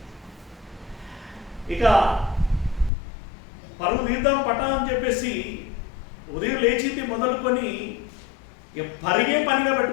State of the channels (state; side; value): drops out; right; at 2.9 s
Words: ఇక పరుగు తీద్దాం పట్టా అని చెప్పేసి ఉదయం లేచింది మొదలుకొని పరిగే పనిగా